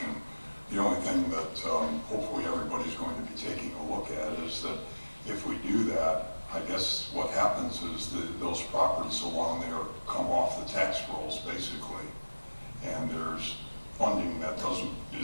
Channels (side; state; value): both; inverted; correlation -1.00